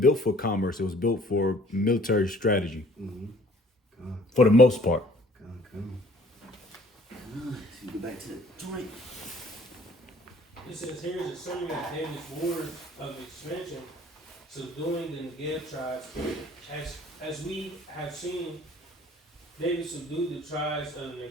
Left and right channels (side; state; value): both; normal; correlation 0.55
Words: built for commerce. It was built for military strategy. For the most part. So you go back to the joint. It says here is a summary of David's wars of expansion, subduing the Negev tribes. As we have seen, David subdued the tribes of the